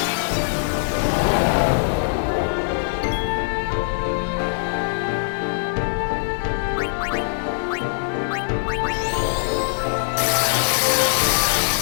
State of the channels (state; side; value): silent; right; digital silence